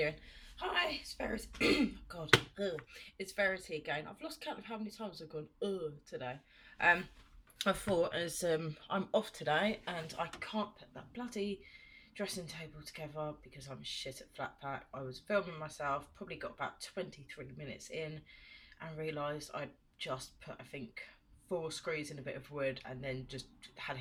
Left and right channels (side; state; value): both; identical; correlation 1.00